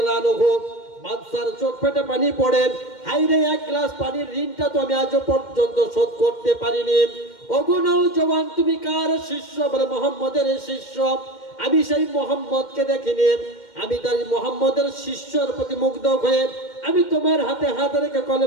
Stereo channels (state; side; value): late; right; 2.1 ms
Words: আনহু। বাদশার চোখ ফেটে পানি পড়ে, হায়রে এক গ্লাস পানির ঋণটা তো আমি আজ পর্যন্ত শোধ করতে পারিনি। ওগো নওজওয়ান, তুমি কার শিষ্য? বলে, মুহাম্মদের শিষ্য। আমি সেই মুহাম্মদকে দেখিনি, আমি তার মুহাম্মদের শিষ্যর প্রতি মুগ্ধ হয়ে আমি তোমার হাতে হাত রেখে